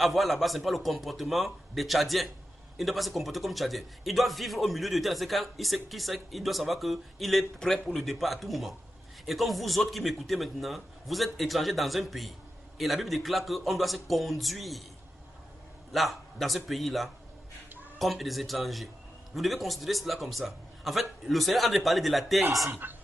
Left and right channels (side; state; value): both; normal; correlation 0.90